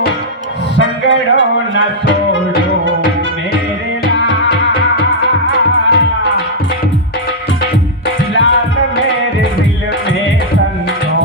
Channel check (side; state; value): both; normal; correlation -0.06